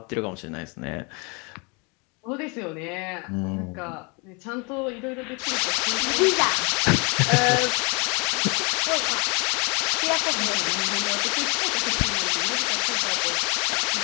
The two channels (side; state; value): right; quieter; 31.3 dB